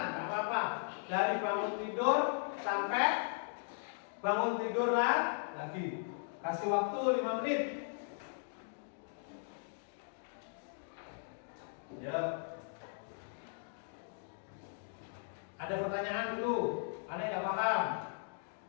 nggak apa-apa. Dari bangun tidur sampai bangun tidur lagi. Kasih waktu 5 menit. Ya. Ada pertanyaan dulu. Ada yang nggak paham?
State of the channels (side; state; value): right; silent; digital silence